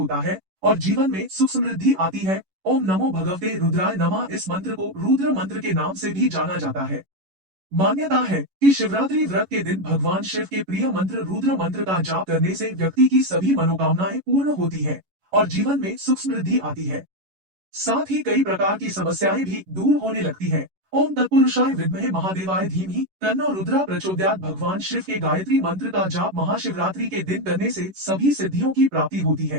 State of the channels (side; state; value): left; late; 11 ms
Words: है और जीवन में सुख समृद्धि आती है। ओम नमो भगवते रुद्राय नमः इस मंत्र को रुद्र मंत्र के नाम से भी जाना जाता है। मान्यता है कि शिवरात्रि व्रत के दिन भगवान शिव के प्रिय मंत्र रुद्र मंत्र का जाप करने से व्यक्ति की सभी मनोकामनाएं पूर्ण होती है और जीवन में सुख समृद्धि आती है। साथ ही कई प्रकार की समस्याएं भी दूर होने लगती है। ओम तत्पुरुषाय विद्महे महादेवाय धीमहि तन्नो रुद्रा प्रचोदयात् भगवान शिव के गायत्री मंत्र का जाप महाशिवरात्रि के दिन करने से सभी सिद्धियों की प्राप्ति होती